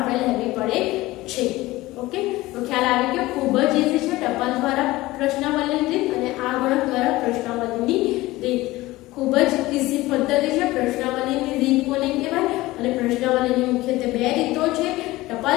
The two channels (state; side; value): quieter; right; 18.7 dB